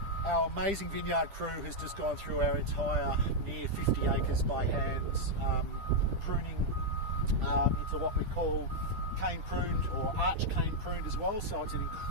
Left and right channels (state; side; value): late; left; 10 ms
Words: Our amazing vineyard crew has just gone through our entire near 50 acres by hand, pruning into what we call cane pruned or arch cane pruned as well. So it's an